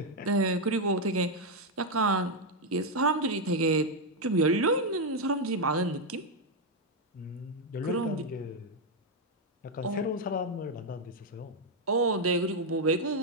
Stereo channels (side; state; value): both; normal; correlation 0.02